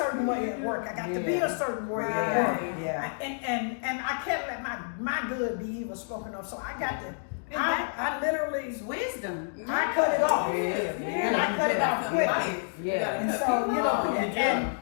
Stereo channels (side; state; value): right; silent; digital silence